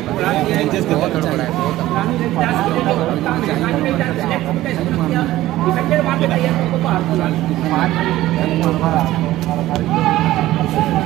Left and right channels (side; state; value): left; quieter; 15.6 dB